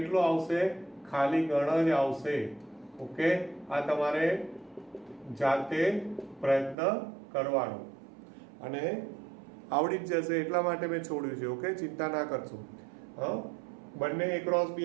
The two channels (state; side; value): drops out; left; at 6.8 s